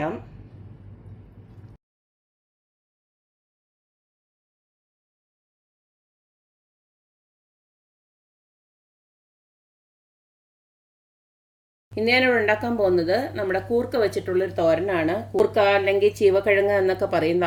ഇന്ന് ഞാനിവിടെ ഉണ്ടാക്കാൻ പോകുന്നത് നമ്മുടെ കൂർക്ക വെച്ചിട്ടുള്ളൊരു തോരനാണ്. കൂർക്ക അല്ലെങ്കിൽ ചീവക്കിഴങ്ങ് എന്നൊക്കെ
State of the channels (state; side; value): identical; both; correlation 1.00